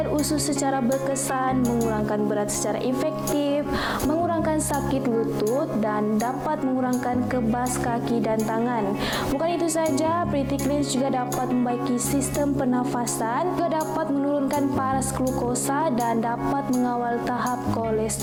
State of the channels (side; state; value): both; identical; correlation 1.00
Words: usus secara berkesan, mengurangkan berat secara efektif, mengurangkan sakit lutut dan dapat mengurangkan kebas kaki dan tangan. Bukan itu saja, Pretty Cleanse juga dapat membaiki sistem pernafasan, juga dapat menurunkan paras glukosa dan dapat mengawal tahap